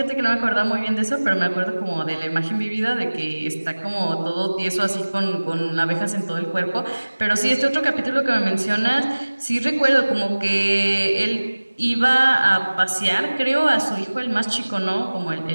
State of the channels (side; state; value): both; inverted; correlation -1.00